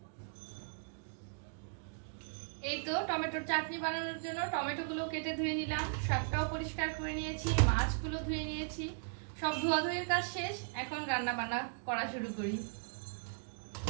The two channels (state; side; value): silent; left; digital silence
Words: এই তো টমেটোর চাটনি বানানোর জন্য টমেটোগুলো কেটে ধুয়ে নিলাম, শাকটাও পরিষ্কার করে নিয়েছি, মাছগুলো ধুয়ে নিয়েছি। সব ধোয়াধুয়ির কাজ শেষ, এখন রান্না বান্না করা শুরু করি।